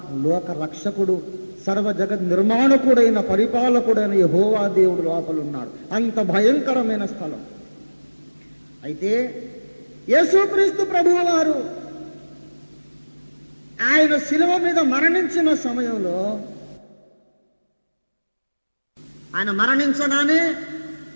లోక రక్షకుడు, సర్వ జగత్ నిర్మాణకుడైన పరిపాలకుడైన యెహోవా దేవుడు లోపల ఉన్నాడు. అంత భయంకరమైన స్థలం. అయితే యేసుక్రీస్తు ప్రభువు వారు ఆయన శిలువ మీద మరణించిన సమయంలో, ఆయన మరణించగానే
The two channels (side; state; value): both; inverted; correlation -1.00